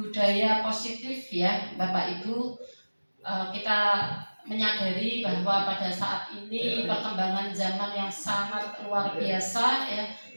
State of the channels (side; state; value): both; inverted; correlation -1.00